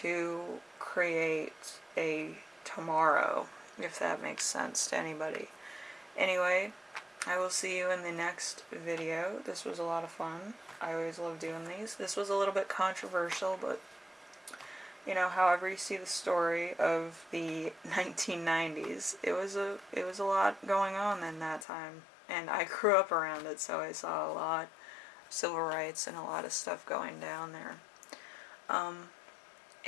create a tomorrow, if that makes sense to anybody. Anyway, I will see you in the next video. This was a lot of fun. I always love doing these. This was a little bit controversial, but you know, however you see the story of the 1990s, it was a lot going on in that time, and I grew up around it, so I saw a lot of civil rights and a lot of stuff going down there.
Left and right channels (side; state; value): right; drops out; at 21.7 s